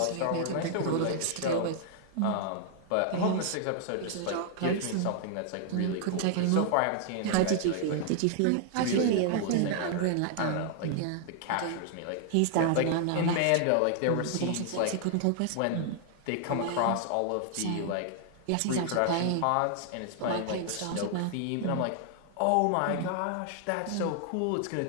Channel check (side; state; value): both; different; correlation 0.00